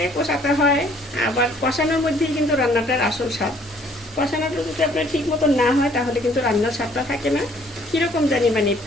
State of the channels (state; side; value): normal; both; correlation 0.60